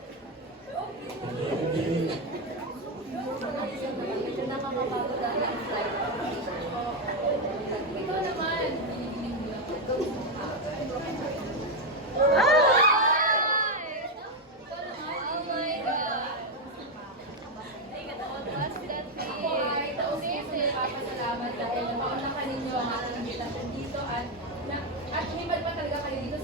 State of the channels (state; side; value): normal; both; correlation 0.06